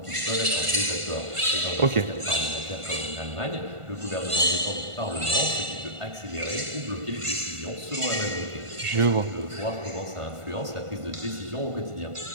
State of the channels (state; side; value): late; left; 1.5 ms